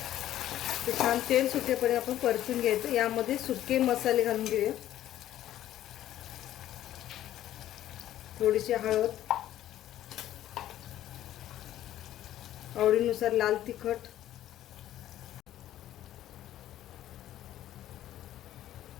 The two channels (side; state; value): right; quieter; 12.8 dB